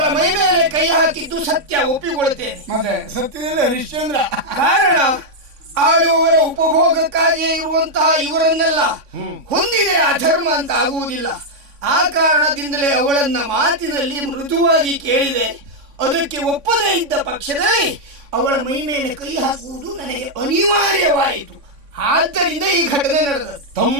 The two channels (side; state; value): left; late; 3.6 ms